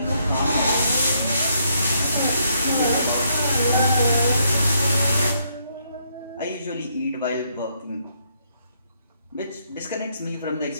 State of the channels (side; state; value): both; inverted; correlation -0.73